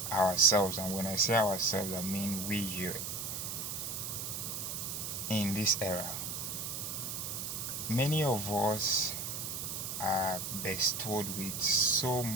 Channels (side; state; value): right; noise; hiss, 4 dB below the sound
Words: ourselves. And when I say ourselves, I mean we here in this era. Many of us are bestowed with so